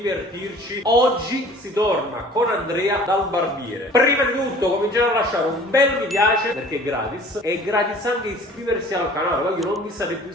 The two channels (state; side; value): normal; both; correlation 0.48